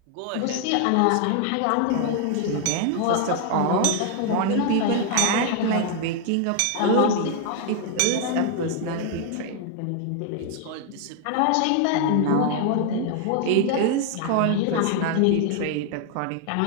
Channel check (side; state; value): both; different; correlation 0.00